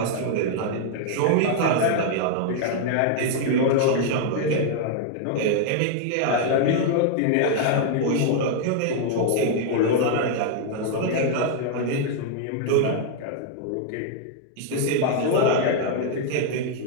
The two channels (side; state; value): both; different; correlation 0.00